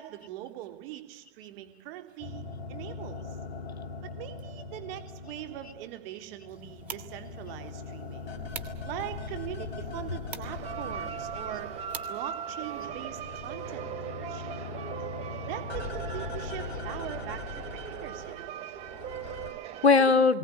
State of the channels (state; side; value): normal; both; correlation 0.16